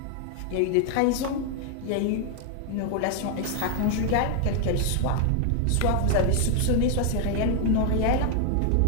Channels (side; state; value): both; different; correlation 0.00